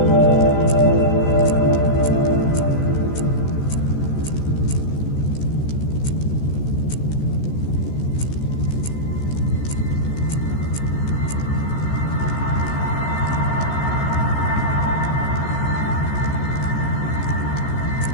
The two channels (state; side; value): late; right; 14 ms